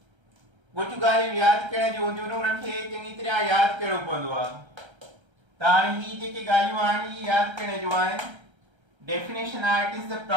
कुझु ॻाल्हियूं यादि करण जूं हूंदियूं आहिनि उन्हनि खे चङी तरह यादि करणो पवंदो आहे. त हाणे ही जेके ॻाल्हियूं आहिनि ही यादि करण जूं आहिनि. Definition आहे it is the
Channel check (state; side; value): late; left; 1.3 ms